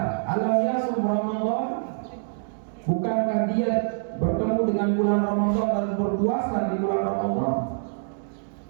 Alam yasum Ramadan. Bukankah dia bertemu dengan bulan Ramadan dan berpuasa di bulan Ramadan?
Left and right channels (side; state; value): left; silent; 61 dB below the other